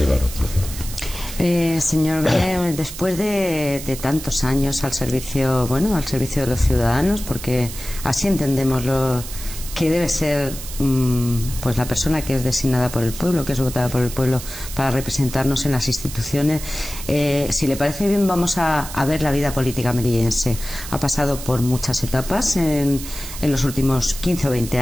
nosotros. Señor, después de tantos años al servicio de los ciudadanos, porque así entendemos lo que debe ser pues la persona que es designada por el pueblo, que es votada por el pueblo para representarnos en las instituciones. Si le parece bien, vamos a ver la vida política melillense. Ha pasado por muchas etapas en los últimos 15 o 20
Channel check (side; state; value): right; noise; hiss, 11 dB below the sound